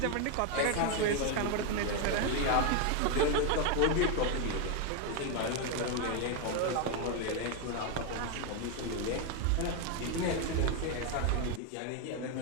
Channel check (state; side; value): different; both; correlation 0.01